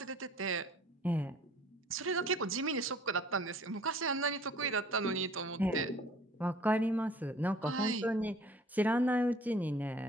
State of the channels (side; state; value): both; normal; correlation 0.52